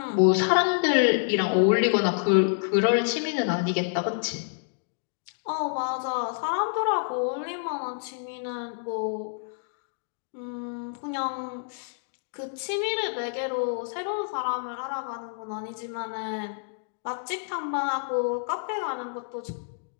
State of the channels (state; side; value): silent; right; digital silence